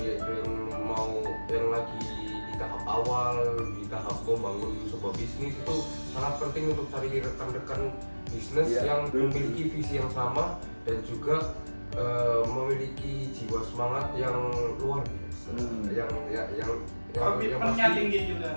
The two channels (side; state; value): both; inverted; correlation -1.00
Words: mau yang lagi di tahap awal, di tahap membangun sebuah bisnis, itu sangat penting untuk cari rekan-rekan bisnis yang memiliki visi yang sama dan juga memiliki jiwa semangat yang luar biasa, yang Komitmennya tinggi